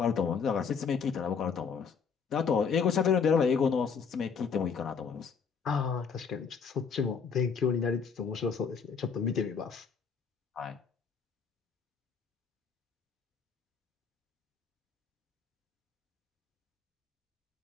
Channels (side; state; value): right; quieter; 6.1 dB